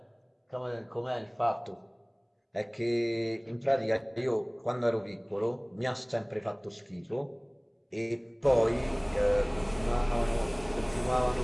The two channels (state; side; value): identical; both; correlation 1.00